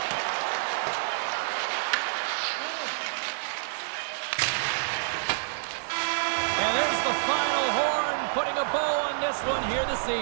And there's the final horn, putting a bow on this one here this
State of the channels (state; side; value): silent; left; digital silence